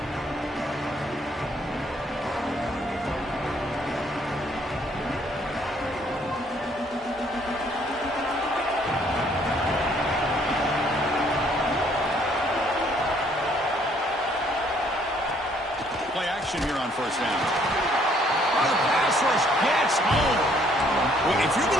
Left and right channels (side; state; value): both; normal; correlation 0.64